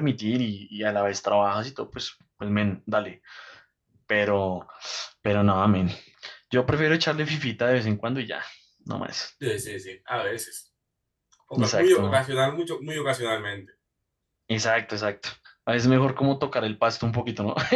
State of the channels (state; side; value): identical; both; correlation 1.00